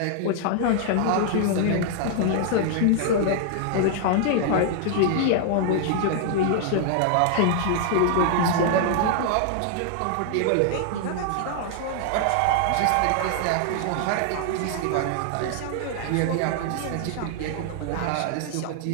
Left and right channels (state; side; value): different; both; correlation 0.00